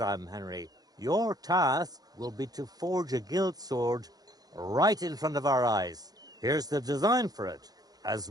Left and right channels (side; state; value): left; late; 0.19 ms